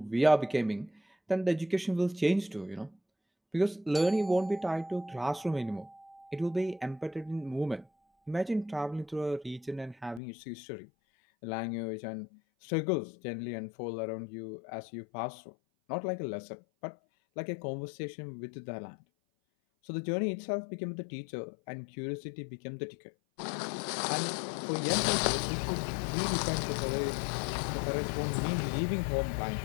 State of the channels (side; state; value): right; drops out; at 10.2 s